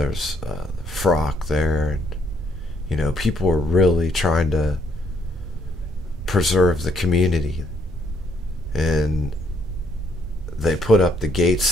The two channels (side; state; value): both; normal; correlation 0.70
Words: Frock there, and people were really trying to preserve the community, and they put up the